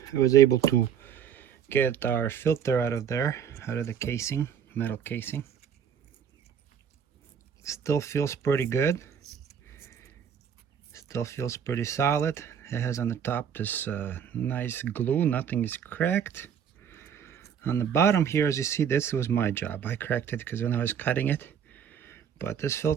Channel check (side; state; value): left; quieter; 8.2 dB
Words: I was able to get our filter out of there, out of the casing, metal casing. Still feels pretty good. Still feels pretty solid. It has on the top this nice glue, nothing is cracked. On the bottom here, as you see, this was my job. I cracked it because when I was cutting it, but this